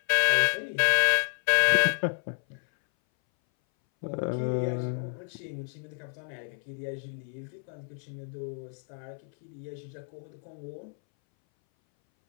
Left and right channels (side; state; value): right; silent; 58 dB below the other